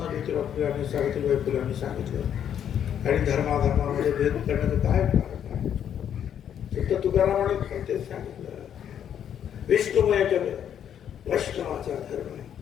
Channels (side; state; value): right; quieter; 9.3 dB